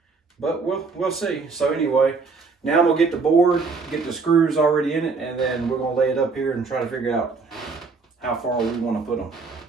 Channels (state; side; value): quieter; left; 4.5 dB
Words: But we'll see. So anyway, now I'm gonna get the board, get the screws already in it, and then we're gonna lay it up here and try to figure out how far we want to put them.